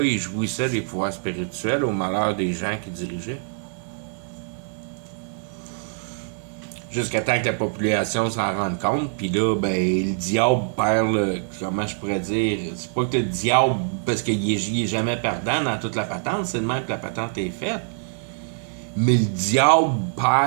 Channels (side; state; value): left; silent; 63 dB below the other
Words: ils jouissaient des pouvoirs spirituels au malheur des gens qui dirigeaient. Jusqu'à temps que la population s'en rende compte, puis là, ben, le diable perd le... Comment je pourrais dire? C'est pas que le diable, parce qu'il est jamais perdant dans toute la patente, c'est de même que la patente est faite. Mais le diable